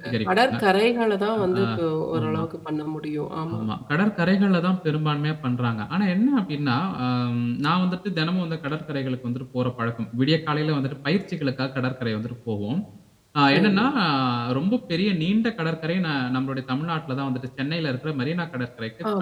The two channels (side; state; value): both; identical; correlation 1.00